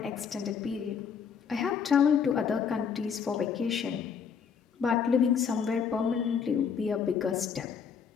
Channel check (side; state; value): right; quieter; 6.8 dB